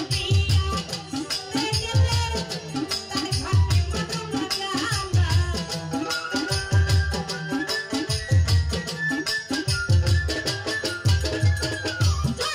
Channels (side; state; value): both; identical; correlation 1.00